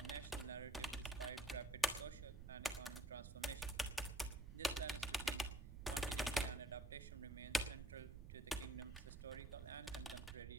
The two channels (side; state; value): right; noise; rumble, 9 dB below the sound